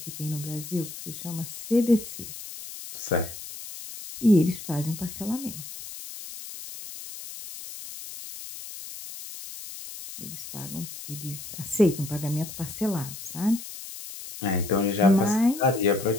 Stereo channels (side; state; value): left; noise; hiss, 11 dB below the sound